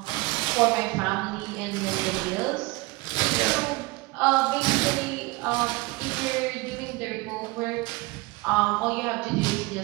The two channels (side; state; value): left; quieter; 22.7 dB